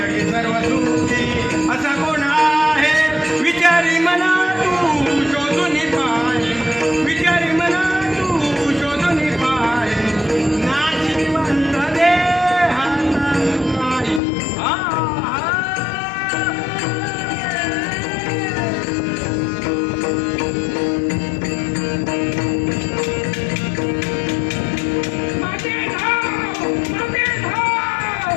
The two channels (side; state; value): right; drops out; at 14.2 s